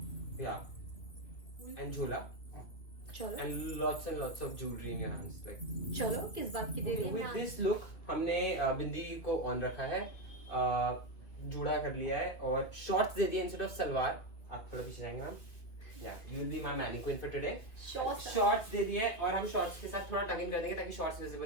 Yeah. And jhola. चलो. And lots of jewelry in your hands, like. चलो किस बात की देरी है? With this look हमने बिंदी को on रखा है, जूड़ा कर लिया है, और शॉर्ट्स दे दिए इंस्टेड ऑफ सलवार। आप थोड़ा पीछे जाएंगे ma'am. Yeah, you will be my mannequin for today. Shorts दे दिए हैं, और हम शॉर्ट्स के साथ थोड़ा टक इन कर देंगे ताकि शॉर्ट्स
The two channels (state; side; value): late; right; 2.7 ms